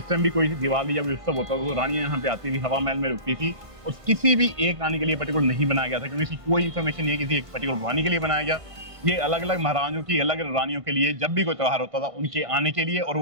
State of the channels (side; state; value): left; late; 1.5 ms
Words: टाइम भी कोई दिवाली या कोई उत्सव होता था तो रानियां यहाँ पे आती थी, हवा महल में रुकती थी, और किसी भी एक रानी के लिए पर्टिकुलर नहीं बनाया गया था, क्योंकि इसकी कोई इन्फॉर्मेशन नहीं है किसी एक पर्टिकुलर रानी के लिए बनाया गया। ये अलग अलग महारानियों की अलग रानियों के लिए, जब भी कोई त्यौहार होता था उनके आने के लिए, और